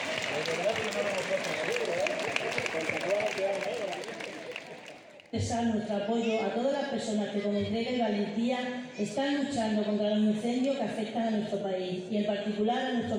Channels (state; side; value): identical; both; correlation 1.00